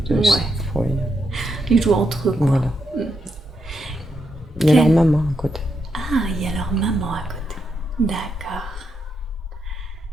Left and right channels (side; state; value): both; normal; correlation 0.82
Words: Ouais. Ils jouent entre eux, quoi. Voilà. Il y a leur maman à côté. Ah, il y a leur maman à côté. D'accord.